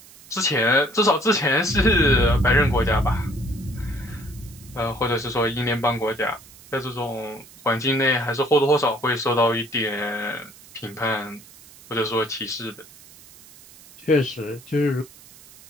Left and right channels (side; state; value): right; noise; hiss, 22 dB below the sound